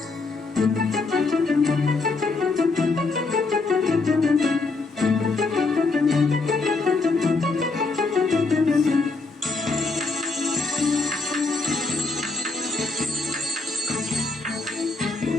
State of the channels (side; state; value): right; quieter; 3.8 dB